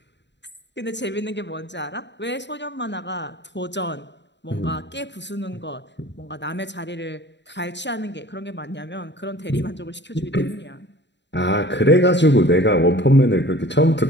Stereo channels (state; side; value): late; right; 0.52 ms